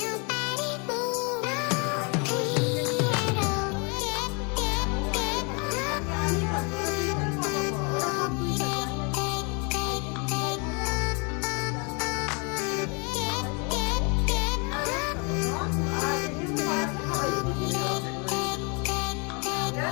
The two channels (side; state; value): right; quieter; 33.4 dB